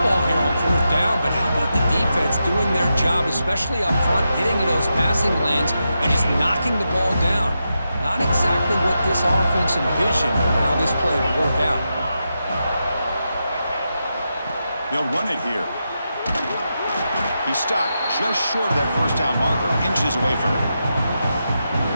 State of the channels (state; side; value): inverted; both; correlation -0.87